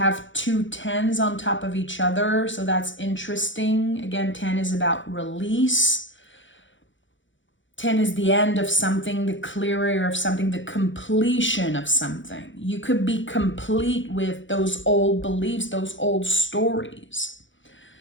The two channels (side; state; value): right; late; 0.55 ms